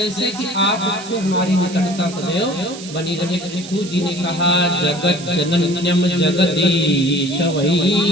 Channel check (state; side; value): noise; right; hiss, 14 dB below the sound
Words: कि आपसे हमारी निकटता सदैव बनी रहे। पृथु जी ने कहा, जगत जनन्यम जगदीश